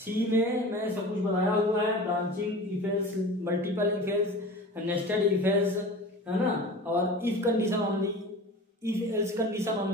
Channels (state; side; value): normal; both; correlation 0.36